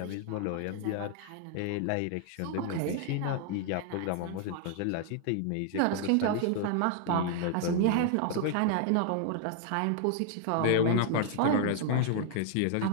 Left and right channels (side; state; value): both; different; correlation 0.00